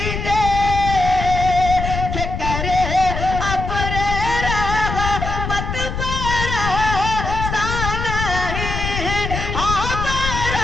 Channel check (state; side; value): noise; left; rumble, 4 dB below the sound